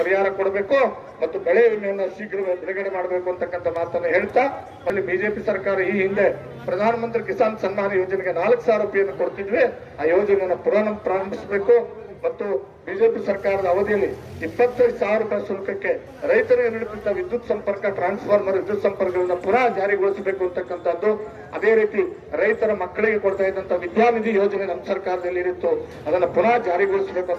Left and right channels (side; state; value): both; identical; correlation 1.00